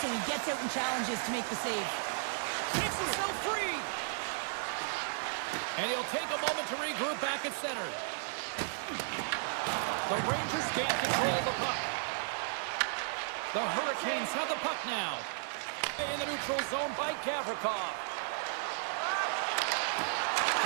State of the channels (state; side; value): silent; left; digital silence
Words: so he gets out and challenges to make the save. Takes himself free. And he'll take a moment to regroup back at center. The Rangers gain control of the puck. The Hurricanes have the puck now. In the neutral zone by Gavrikov.